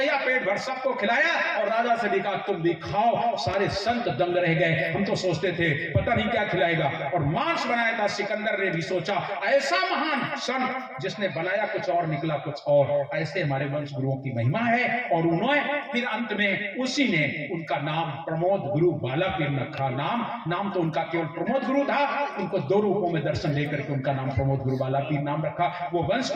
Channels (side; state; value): both; identical; correlation 1.00